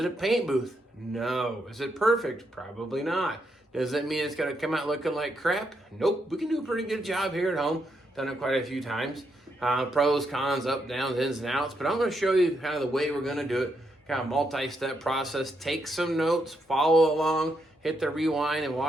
a paint booth? No. Is it perfect? Probably not. Does that mean it's going to come out looking like crap? Nope. We can do a pretty good job here at home. Done it quite a few times. Pros, cons, up, downs, ins, and outs. But I'm going to show you kind of the way we're going to do it. Kind of multi-step process. Take some notes, follow along, hit the rewind, and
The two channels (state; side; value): normal; both; correlation 0.79